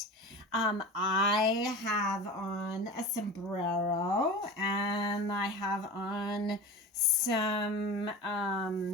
I have on a sombrero, and I have on some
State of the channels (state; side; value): normal; both; correlation 0.32